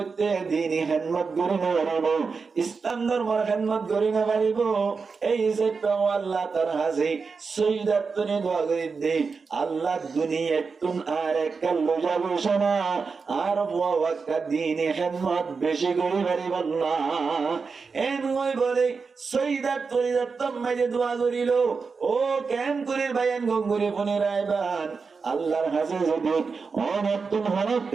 দিনই হিম্মত করি না পারিব ইসলাম ধর্মের হিম্মত করি না পারিব এই যে আল্লাহ তার হাসি সৈয়দাতনে দোয়া করে দে আল্লাহ দুনিয়া তুন আর একল যাবো শোনা আর বুয়া ওয়াক্কা দিনই হিম্মত বেশি করি পারিব না এন ওই বলে সৈয়দাতনে দত্তম মাঝে দোয়া করিল ও কেন করে বায়ান গঙ্গুরে ফোনে রায়বান আল্লাহর কাছে যদি অনতুন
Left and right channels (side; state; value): left; quieter; 4.9 dB